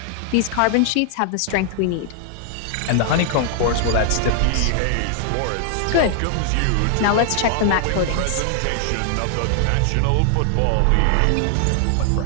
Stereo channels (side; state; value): both; different; correlation 0.00